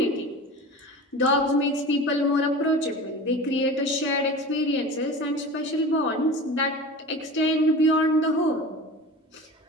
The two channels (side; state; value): both; normal; correlation 0.34